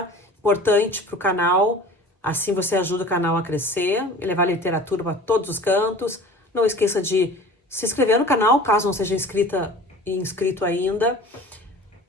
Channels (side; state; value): both; normal; correlation 0.42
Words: importante para o canal. Assim você ajuda o canal a crescer e levar literatura para todos os cantos. Não esqueça de se inscrever no canal, caso não seja inscrito ainda.